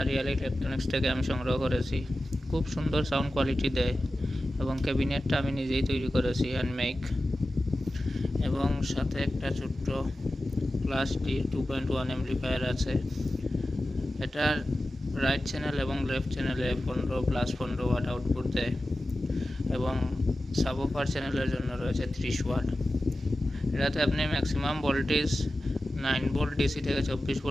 রিয়াল ইলেকট্রনিক্স থেকে আমি সংগ্রহ করেছি। খুব সুন্দর সাউন্ড কোয়ালিটি দেয় এবং ক্যাবিনেটটা আমি নিজেই তৈরি করেছি, হ্যান্ডমেক। এবং সাথে একটা ছোট্ট ক্লাস ডি 2.1 অ্যাম্পলিফায়ার আছে। এটার রাইট চ্যানেল এবং লেফট চ্যানেলে 15+15 ওয়াট আউটপুট দেয় এবং সাবওুফার চ্যানেলের জন্য রয়েছে 30 ওয়াট। এটাতে আপনি ম্যাক্সিমাম ভোল্টেজ 9 ভোল্ট ডিসি থেকে 24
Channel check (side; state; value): both; normal; correlation 0.94